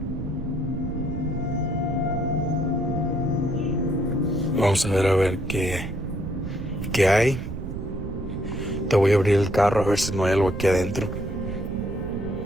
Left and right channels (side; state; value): right; noise; rumble, 6 dB below the sound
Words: Vamos a ver qué hay. Te voy a abrir el carro a ver si no hay algo aquí adentro.